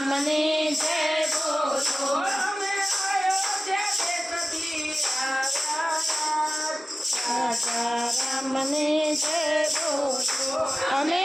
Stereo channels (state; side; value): normal; both; correlation 0.95